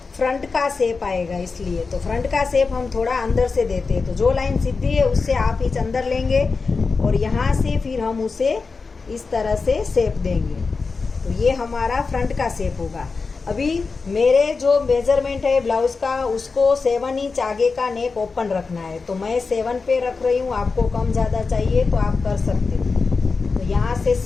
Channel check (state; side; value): quieter; right; 4.4 dB